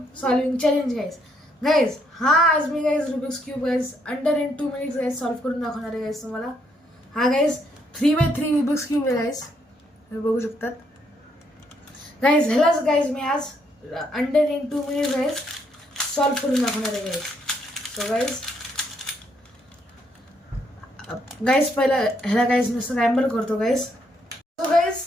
solving challenge guys. Guys आज मी guys Rubik's cube guys under in 2 minutes guys solve करून दाखवणार आहे गाइस तुम्हाला. हा गाइस 3x3 रुबिक्स क्यूब आहे गाइस, तुम्ही बघू शकतात गाइस. ह्यालाच गाइस मी आज under in 2 minutes guys solve करून दाखवणार आहे गाइस. सो गाइस पहिला ह्याला गाइस मी स्क्रॅम्बल करतो गाइस. सो गाइस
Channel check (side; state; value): both; normal; correlation 0.73